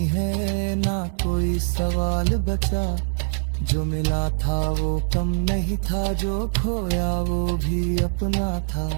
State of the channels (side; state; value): left; silent; digital silence